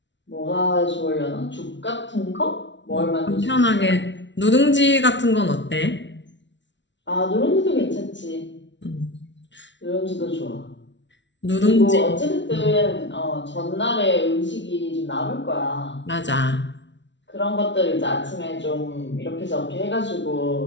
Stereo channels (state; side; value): late; right; 0.53 ms